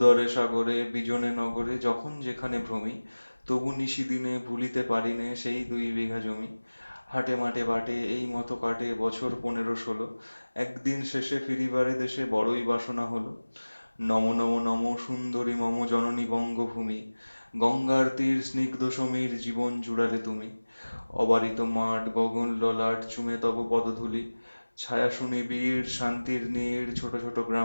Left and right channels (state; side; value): inverted; both; correlation -1.00